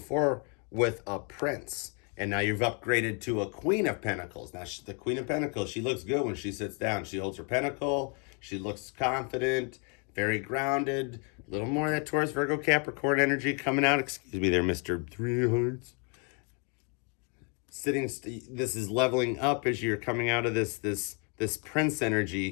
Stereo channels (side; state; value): right; quieter; 36.6 dB